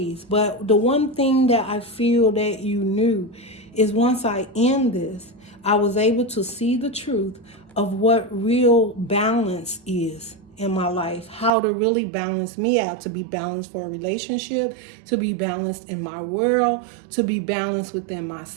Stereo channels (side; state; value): left; drops out; at 11.5 s